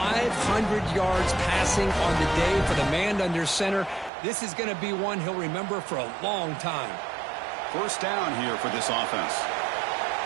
yards passing on the day for the man under center. This is going to be one he'll remember for a long time. First down here for this offense.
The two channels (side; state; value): left; drops out; at 4.1 s